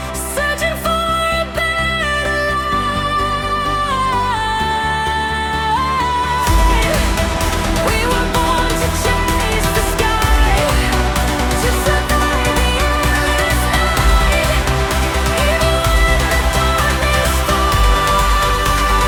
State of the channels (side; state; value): both; identical; correlation 1.00